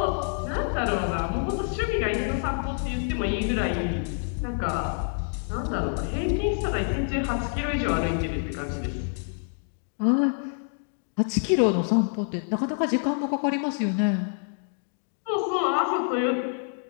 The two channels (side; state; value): right; silent; 57 dB below the other